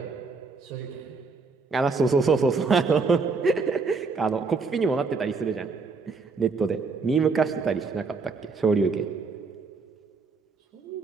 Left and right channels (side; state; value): left; quieter; 4.5 dB